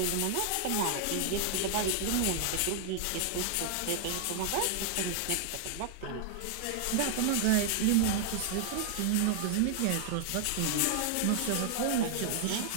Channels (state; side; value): different; both; correlation 0.00